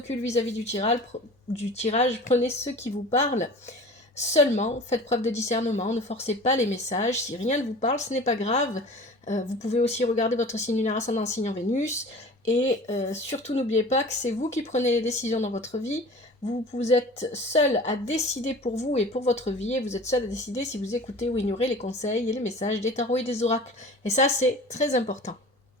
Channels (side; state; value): both; normal; correlation 0.41